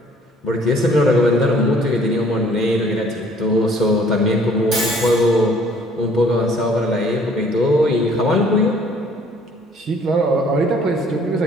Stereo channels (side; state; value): both; normal; correlation 0.58